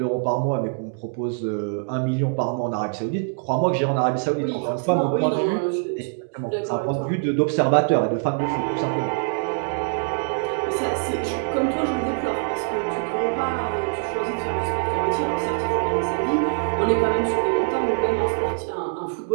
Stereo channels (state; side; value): silent; left; digital silence